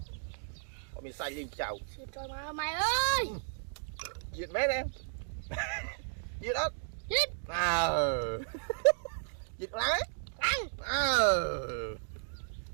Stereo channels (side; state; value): left; silent; digital silence